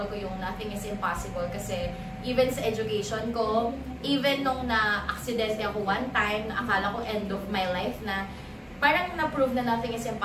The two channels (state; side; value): identical; both; correlation 1.00